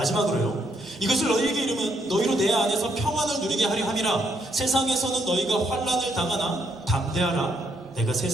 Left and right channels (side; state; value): both; normal; correlation 0.74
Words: 이것을 너희에게 이르면 너희로 내 안에서 평안을 누리게 하려 함이라. 세상에서는 너희가 환난을 당하나 담대하라. 내가